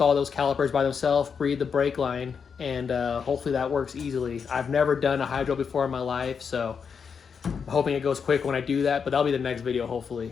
those calipers by themselves, breed the brake line, and hopefully that works easily. I've never done a hydro before in my life, so I'm hoping it goes quick when I do that, but that'll be the next video,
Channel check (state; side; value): quieter; right; 6.3 dB